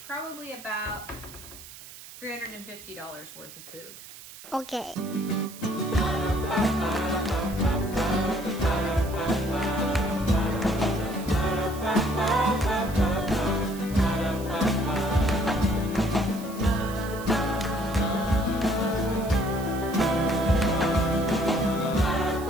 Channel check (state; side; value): noise; right; hiss, 16 dB below the sound